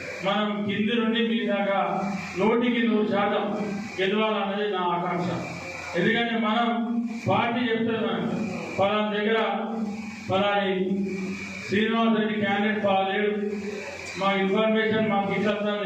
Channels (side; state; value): both; identical; correlation 1.00